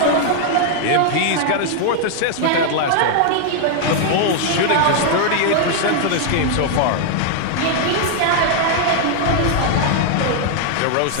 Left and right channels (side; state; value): both; different; correlation 0.00